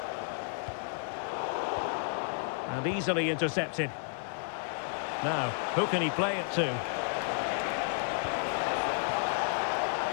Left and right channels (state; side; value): silent; right; 56 dB below the other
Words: And easily intercepted. Now, who can he play it to?